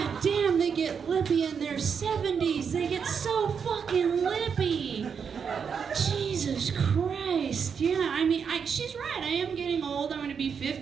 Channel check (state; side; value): quieter; left; 6.6 dB